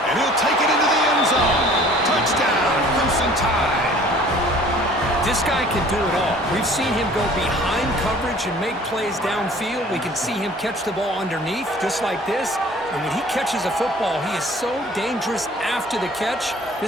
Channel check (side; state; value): both; normal; correlation 0.51